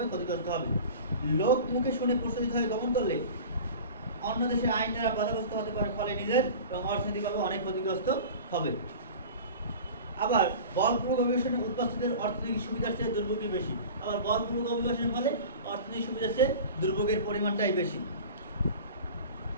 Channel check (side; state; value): both; inverted; correlation -0.37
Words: ক্ষতিগ্রস্ত হবে। লোক মুখে শুনে প্রচলিত হয়ে গমন করলে অন্য দেশের আইন দ্বারা বাধাগ্রস্ত হতে পারে, ফলে নিজের এবং অর্থনৈতিকভাবে অনেক ক্ষতিগ্রস্ত হবে। আবার বলপূর্বক অভিবাসনের উদ্বাস্তুদের অর্থনৈতিক সুবিধার চেয়ে দুর্ভোগই বেশি। আবার বলপূর্বক অভিবাসনের ফলে অর্থনৈতিক সুবিধার চেয়ে দুর্ভোগের পরিমাণটাই বেশি।